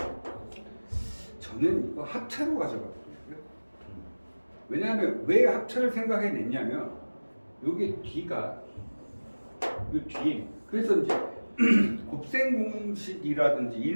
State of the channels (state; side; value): inverted; both; correlation -1.00